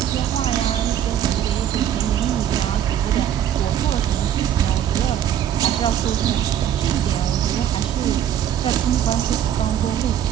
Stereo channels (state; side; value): quieter; left; 10.3 dB